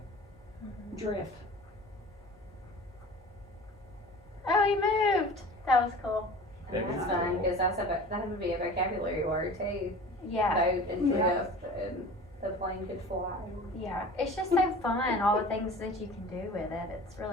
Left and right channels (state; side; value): normal; both; correlation 0.40